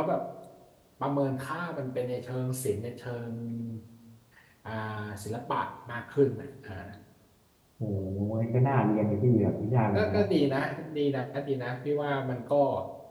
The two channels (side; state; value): both; identical; correlation 1.00